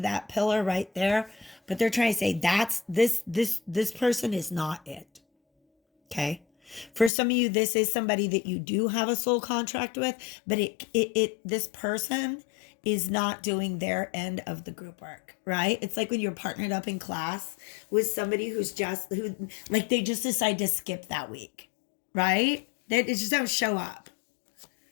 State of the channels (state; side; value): drops out; right; at 7.1 s